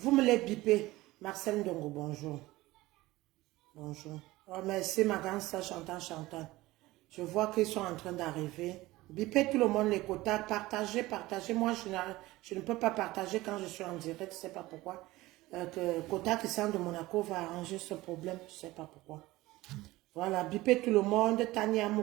me les bipez. Marcel Ndongo, bonjour. Bonjour. Oh, merci, ma grande soeur Chantal. Je vois qu'ils sont en train d'arriver. Bipez tout le monde les quotas. Partagez. Moi, je ne peux pas partager quand je suis en direct. Je ne sais pas pourquoi. Quota Christian de Monaco va arranger ce problème. Je ne sais pas pourquoi. Voilà. Bipez tout le monde. Tania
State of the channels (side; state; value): left; quieter; 18.7 dB